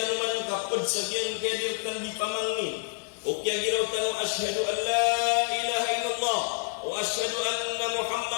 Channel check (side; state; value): right; silent; digital silence